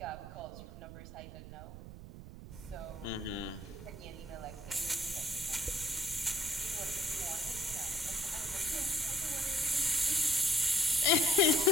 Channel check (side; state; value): right; noise; rumble, 13 dB below the sound